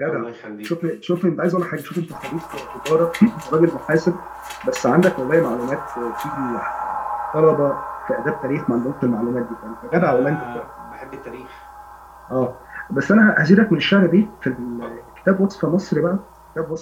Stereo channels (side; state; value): both; identical; correlation 1.00